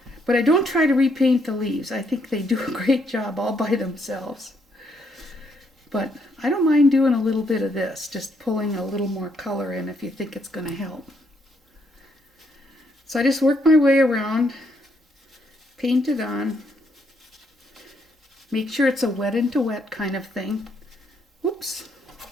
But I don't try to repaint the leaves. I think they do a great job all by themselves. But I don't mind doing a little bit of this, just pulling a little more color in if you think it's going to help. So I just work my way around, paint it on, make sure it's a wet into wet kind of thing. Whoops.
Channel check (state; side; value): normal; both; correlation 0.73